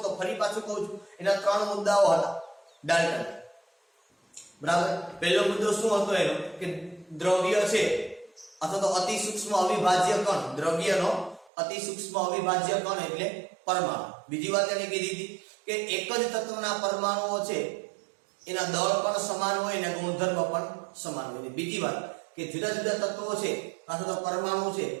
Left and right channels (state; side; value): drops out; left; at 11.5 s